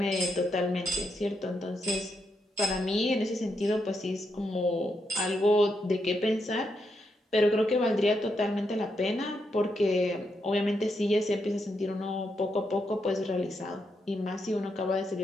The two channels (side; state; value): both; normal; correlation 0.82